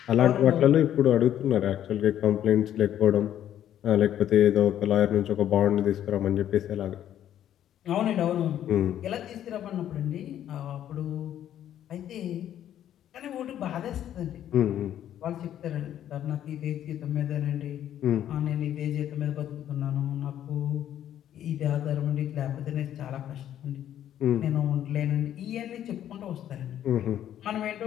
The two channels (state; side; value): quieter; right; 11.0 dB